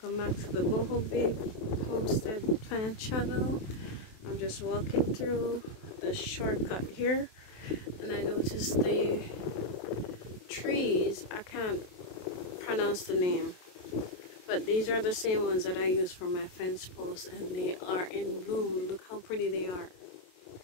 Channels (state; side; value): late; right; 27 ms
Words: back to the Boho Babe Homestead Plant channel. I'm just walking through the shortcut here and I noticed the trees. I can't pronounce the name, but these are the same ones that I use for my fence posts and they are in bloom. Look how pretty they are.